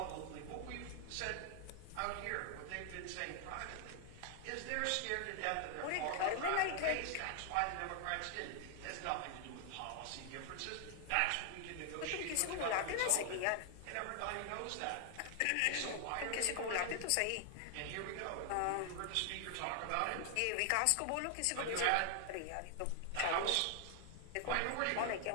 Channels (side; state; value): both; different; correlation 0.00